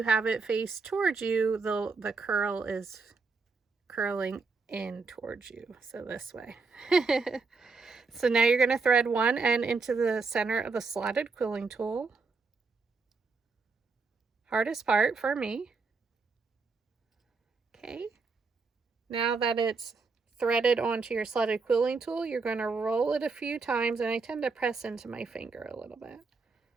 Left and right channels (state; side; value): quieter; left; 4.4 dB